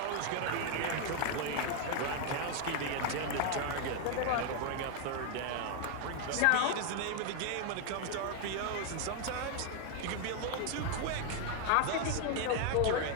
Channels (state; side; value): different; both; correlation 0.00